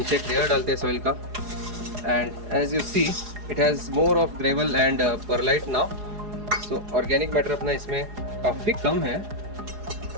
एक लेयर डालते हैं सॉइल का and as you see it has more of gravel and perlite now. So organic matter अपना इसमें काफ़ी कम है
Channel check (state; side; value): late; left; 4.8 ms